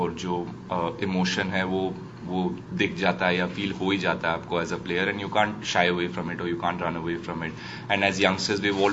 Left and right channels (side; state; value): both; identical; correlation 1.00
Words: जो इमोशन है वो दिख जाता है या फील हो ही जाता है आपको as a player, and you can't shy away from it और you can't run away from it. And as youngsters we